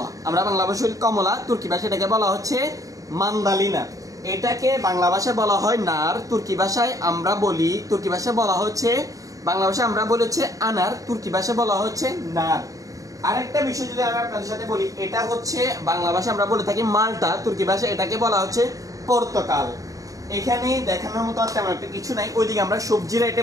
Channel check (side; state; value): left; late; 0.16 ms